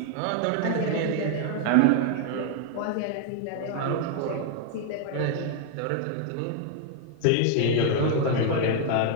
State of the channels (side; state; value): both; different; correlation 0.00